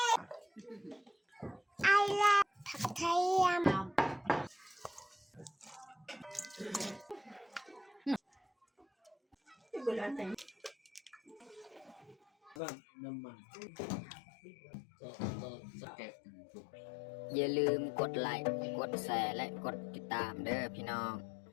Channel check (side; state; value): right; drops out; at 12.6 s